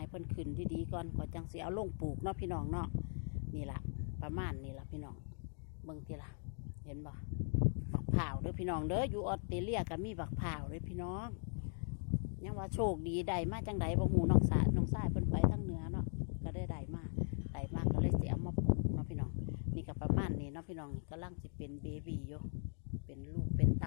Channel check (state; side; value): silent; right; 51 dB below the other